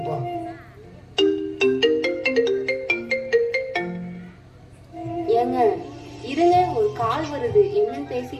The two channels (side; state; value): both; identical; correlation 1.00